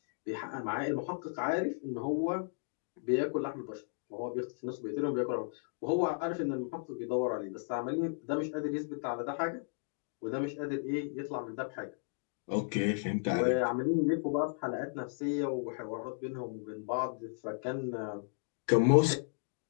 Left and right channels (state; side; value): silent; right; digital silence